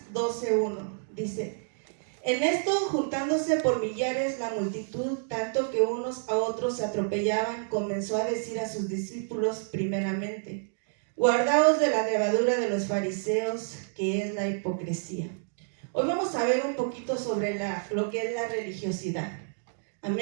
12:1 dice: en esto, juntándose por millares la multitud, tanto que unos a otros se atropellaban, comenzó a decir a sus discípulos primeramente: guardaos de la levadura de los fariseos, que es la hipocresía. Hoy vamos a ver un poquito sobre lo que es la religiosidad.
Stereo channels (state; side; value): silent; left; digital silence